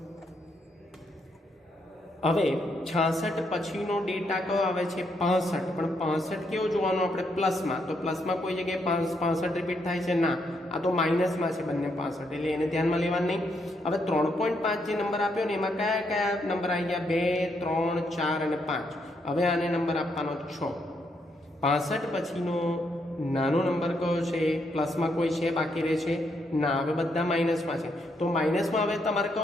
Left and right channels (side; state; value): both; normal; correlation 0.77